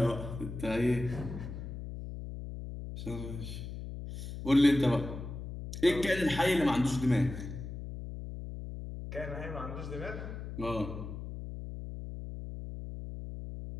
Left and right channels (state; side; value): noise; left; hum, 8 dB below the sound